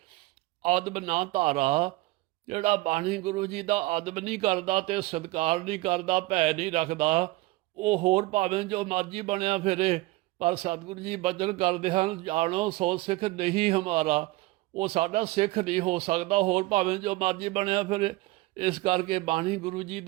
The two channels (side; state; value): left; quieter; 20.2 dB